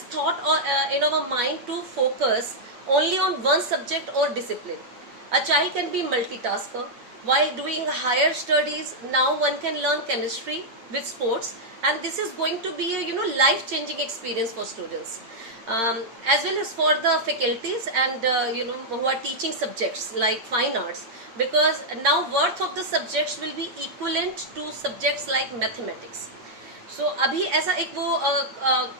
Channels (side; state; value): left; late; 8.8 ms